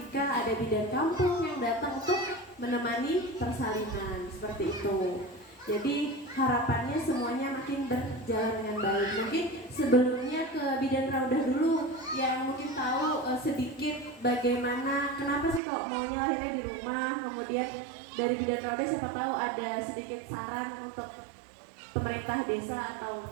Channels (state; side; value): drops out; left; at 15.6 s